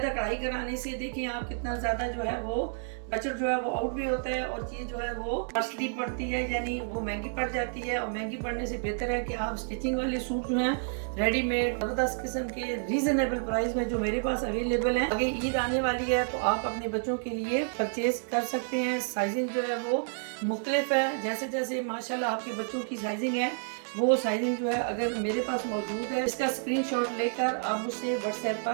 कढ़ाई कराने से देखिए आप कितना ज़्यादा जो है वो बजट जो है वो आउट भी होता है और चीज़ जो है वो कॉस्टली पड़ती है, यानी वो महंगी पड़ जाती है। और महंगी पड़ने से बेहतर है कि आप स्टिचिंग वाले सूट जो हैं रेडीमेड ज़बरदस्त किस्म के रीजनेबल प्राइस में जो मेरे पास अवेलेबल हैं, आगे ईद आने वाली है तो आप अपने बच्चों के लिए परचेज कर सकते हैं। साइजिंग जो है वो मुख्तलिफ है, जैसे जैसे माशाल्लाह आपके बच्चों की साइजिंग है वो साइजिंग जो है अगर मेरे पास मौजूद है, इसका स्क्रीनशॉट लेकर आप मुझसे व्हाट्सएप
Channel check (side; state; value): left; silent; digital silence